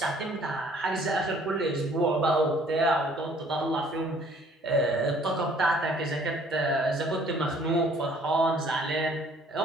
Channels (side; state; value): both; normal; correlation 0.58